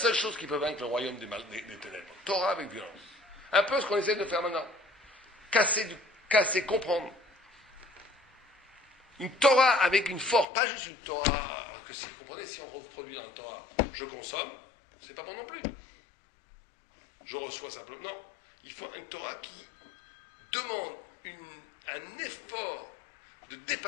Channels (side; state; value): right; drops out; at 10.5 s